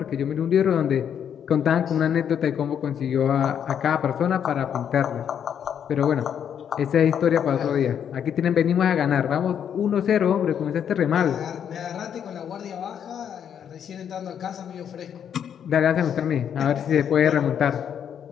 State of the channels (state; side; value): quieter; right; 8.6 dB